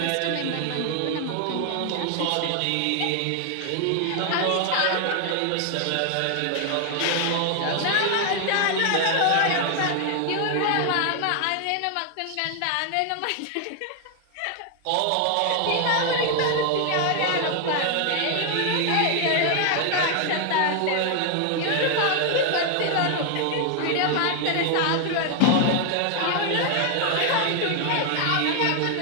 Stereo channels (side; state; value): both; different; correlation 0.00